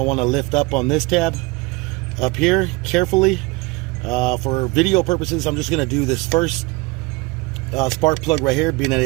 want to lift up on this tab up here carefully. For video purposes, I'm just going to do this first spark plug right here, being that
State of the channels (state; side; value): quieter; left; 24.1 dB